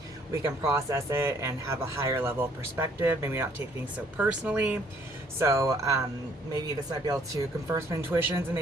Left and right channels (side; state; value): both; normal; correlation 0.62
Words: we can process it and have a higher level of perspective, maybe not take things so personally. So maybe this might be able to confirm some intuitions and